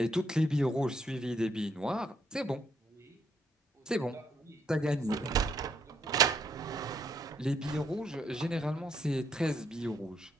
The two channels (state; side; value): normal; both; correlation 0.72